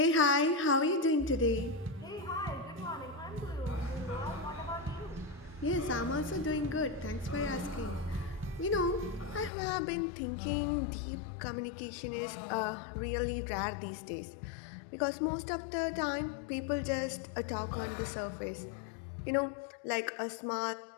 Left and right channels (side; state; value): right; drops out; at 9.5 s